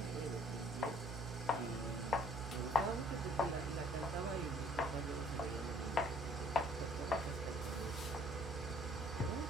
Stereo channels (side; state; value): right; noise; hum, 7 dB below the sound